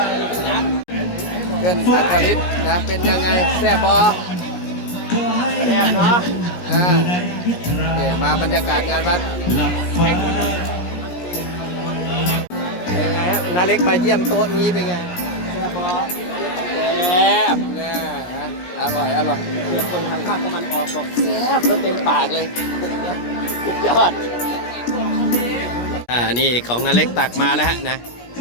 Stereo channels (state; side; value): late; right; 17 ms